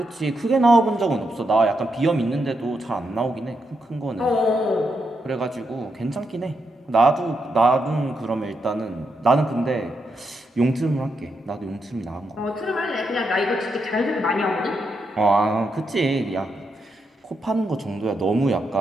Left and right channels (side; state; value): both; normal; correlation 0.82